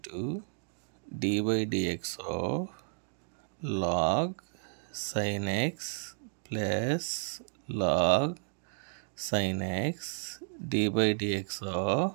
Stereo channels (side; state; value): left; silent; digital silence